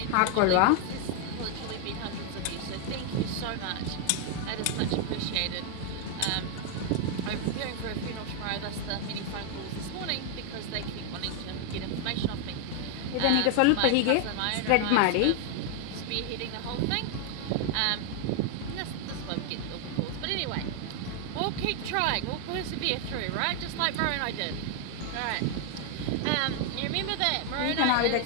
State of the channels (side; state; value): both; different; correlation 0.00